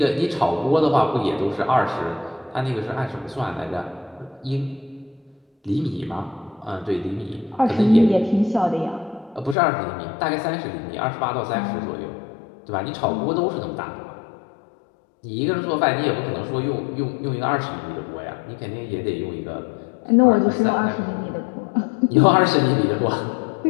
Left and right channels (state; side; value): drops out; right; at 9.6 s